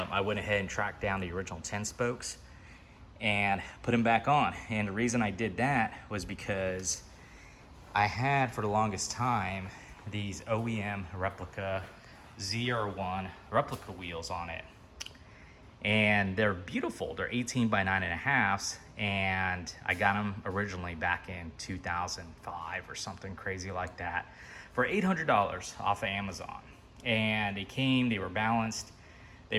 went ahead and tracked down the original 10 spokes and put them back on. And the reason I did that was because I had, for the longest time, these OEM Replica ZR1 replica wheels on it. And they're beautiful. They're 18 by 9.5, and I got them originally back in 2005 or something crazy like that for $800 off of Amazon. And they were balanced,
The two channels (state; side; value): identical; both; correlation 1.00